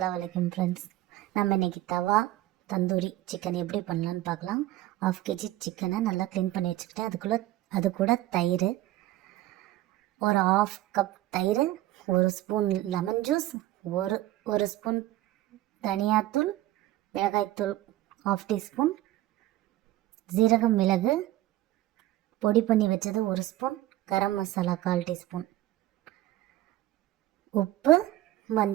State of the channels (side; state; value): left; quieter; 15.7 dB